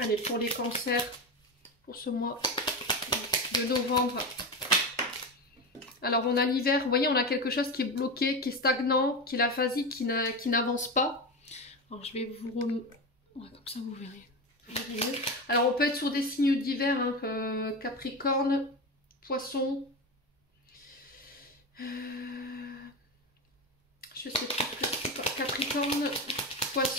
pour les cancers, pour ce mois de novembre. Alors on a l'hiver, vous voyez, on a quelque chose qui est bloqué, qui est stagnant, qui est l'aphasique, qui n'avance pas. Alors je vais vous ouais, comme ça vous verrez. Alors on peut être sur des signes d'hiver, hein, Capricorne, Poisson. Je sais plus, Capricorne,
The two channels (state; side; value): normal; both; correlation 0.20